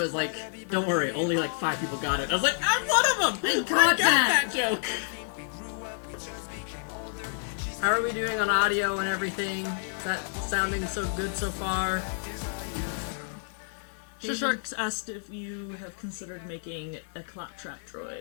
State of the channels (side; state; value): right; silent; 58 dB below the other